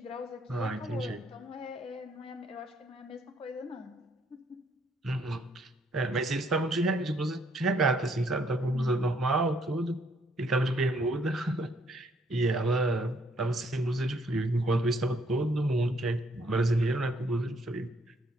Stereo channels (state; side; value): normal; both; correlation 0.68